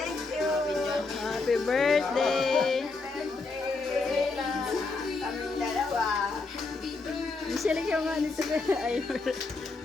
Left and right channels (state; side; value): quieter; right; 3.8 dB